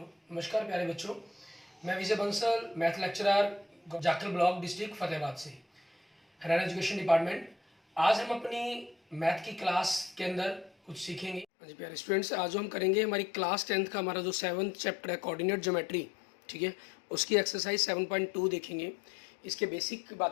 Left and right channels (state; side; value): drops out; right; at 11.5 s